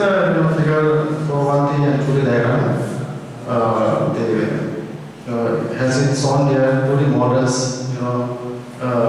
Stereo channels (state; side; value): identical; both; correlation 1.00